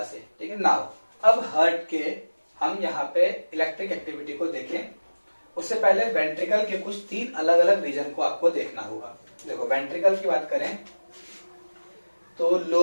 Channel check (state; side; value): inverted; both; correlation -1.00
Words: से। ठीक है। नाउ अब हार्ट के हम यहाँ पे इलेक्ट्रिक एक्टिविटी को देखें, उससे पहले वेंट्रिकल के कुछ 3 अलग अलग रीजन को आपको देखना होगा। देखो, वेंट्रिकल की बात करें तो